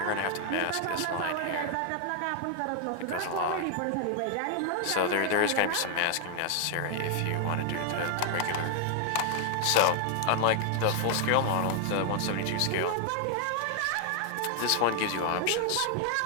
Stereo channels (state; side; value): different; both; correlation 0.00